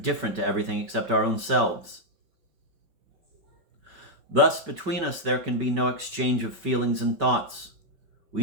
to everything except our own selves. Thus, between us there can be no exchange of feelings and thoughts.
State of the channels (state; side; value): late; left; 5.2 ms